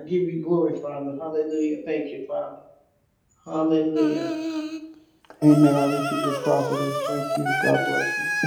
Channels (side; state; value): both; identical; correlation 1.00